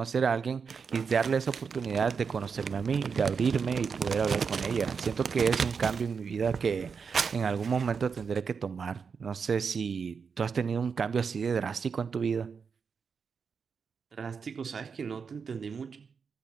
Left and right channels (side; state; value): left; quieter; 5.9 dB